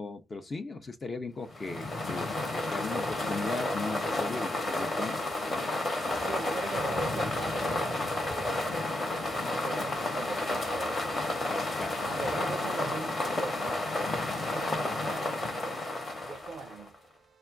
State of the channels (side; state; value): both; normal; correlation 0.82